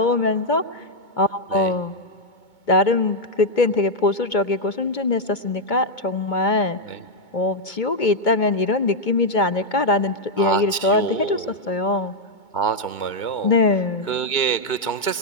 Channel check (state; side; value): late; right; 2.2 ms